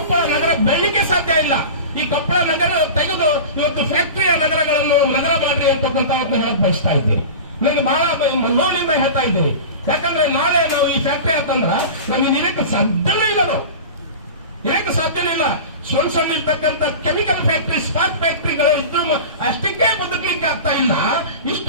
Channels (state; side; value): inverted; both; correlation -0.31